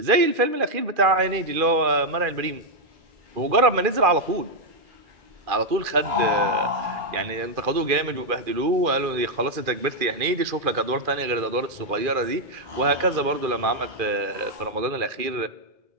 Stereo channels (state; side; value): late; left; 2.4 ms